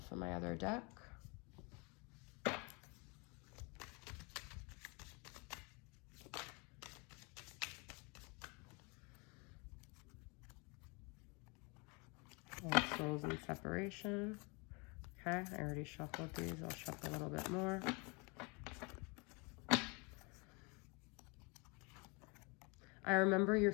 from my other deck. Old Souls and Separation. Okay, I already shuffled these. I'll shuffle a little bit more. I remember your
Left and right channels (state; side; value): quieter; right; 30.4 dB